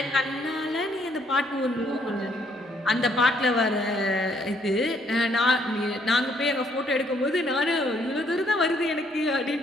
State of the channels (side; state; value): both; normal; correlation 0.68